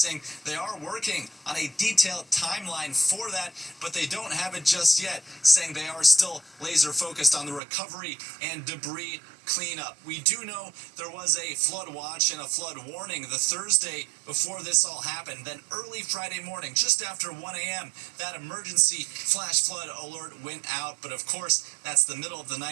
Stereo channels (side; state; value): left; drops out; at 7.6 s